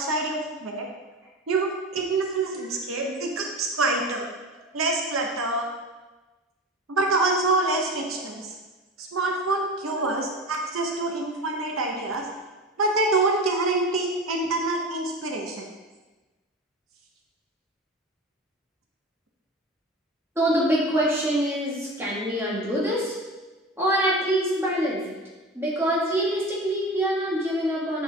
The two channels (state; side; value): normal; both; correlation 0.30